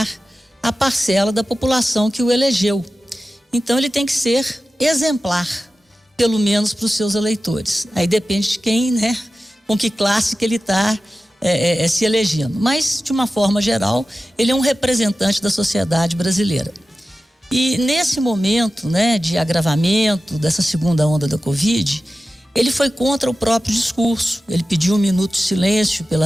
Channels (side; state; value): both; normal; correlation 0.94